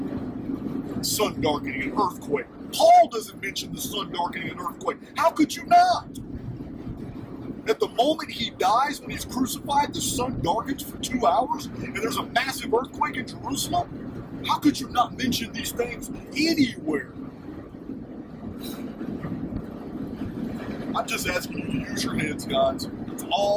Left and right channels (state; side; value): identical; both; correlation 1.00